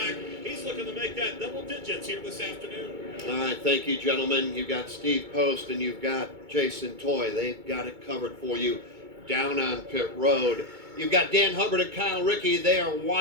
He's looking to make that double digits here this afternoon. All right, thank you, gentlemen. You've got Steve Post and you've got Jason Toy. They've got it covered for you down on pit road. You've got Dan Hubbard and Kyle Rickey. They are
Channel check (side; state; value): left; late; 2.2 ms